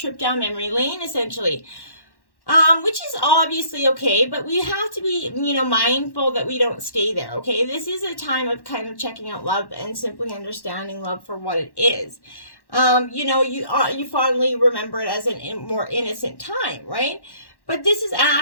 down memory lane, essentially. Which is obviously okay, but we have to be, mindful that we don't stay there, okay? This is a time of kind of checking out love and simply understanding love for what it is. You fondly remember it as a more innocent time, right? But this is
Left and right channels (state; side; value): late; right; 1.1 ms